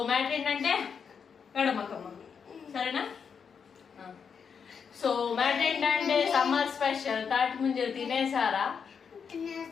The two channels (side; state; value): right; quieter; 6.5 dB